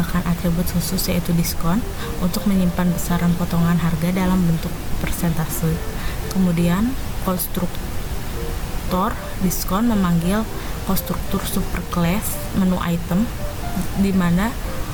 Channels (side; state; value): both; identical; correlation 1.00